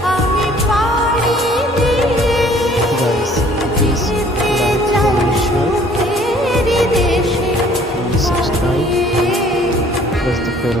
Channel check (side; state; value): both; normal; correlation 0.56